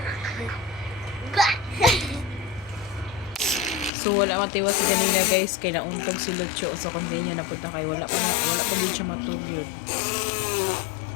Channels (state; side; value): drops out; right; at 3.9 s